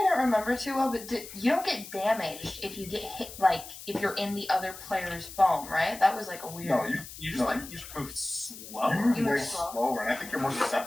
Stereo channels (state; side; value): noise; left; hiss, 14 dB below the sound